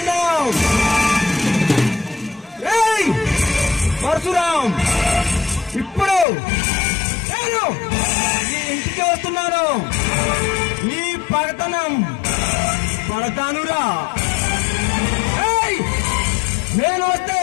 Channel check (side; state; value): right; drops out; at 6.2 s